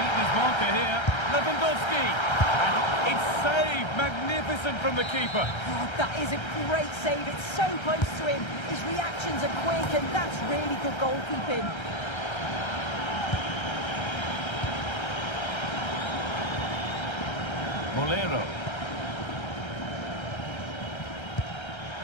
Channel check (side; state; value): right; late; 1.3 ms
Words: his marker here. Lewandowski. And it's saved. Magnificent from the keeper. Oh, that is a great save. It's so close to him. His reactions are quick, and that's really good goalkeeping. Molero.